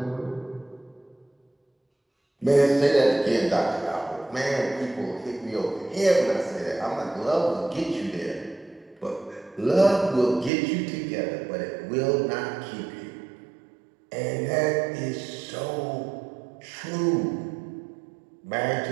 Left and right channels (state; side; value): drops out; left; at 10.5 s